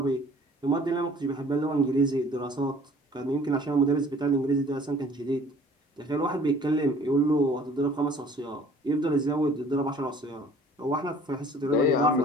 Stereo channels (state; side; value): normal; both; correlation 0.52